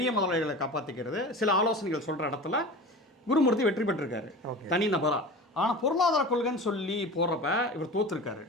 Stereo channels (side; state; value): both; normal; correlation 0.34